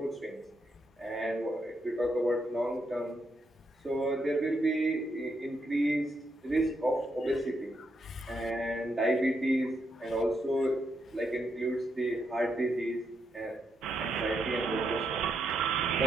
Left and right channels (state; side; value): normal; both; correlation 0.80